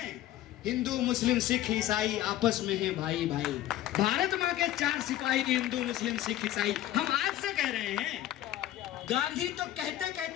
हिंदू मुस्लिम सिख ईसाई आपस में हैं भाई भाई। भारत माँ के 4 सिपाही हिंदू मुस्लिम सिख ईसाई। हम आज से कह रहे हैं। गांधी तो कहते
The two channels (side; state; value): right; quieter; 13.7 dB